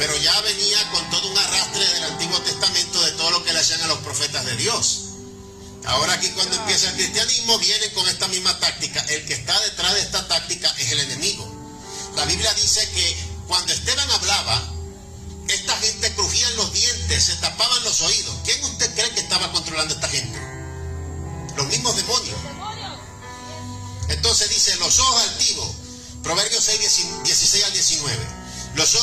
ya venía con todo un arrastre del Antiguo Testamento de todo lo que le hacían a los profetas de Dios. Ahora aquí cuando empieza el cristianismo vienen con esta misma táctica. El que está detrás de esta táctica es el enemigo. La Biblia dice que cuando Esteban hablaba, esta gente crujía los dientes, se tapaban los oídos. ¿Quién usted cree que estaba controlando a esta gente? Los mismos demonios. Entonces dice: los ojos altivos, Proverbios 6, 16 al 19. Los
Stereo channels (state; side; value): identical; both; correlation 1.00